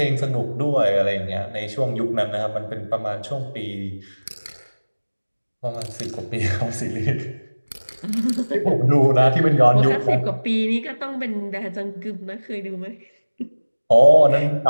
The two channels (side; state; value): both; inverted; correlation -1.00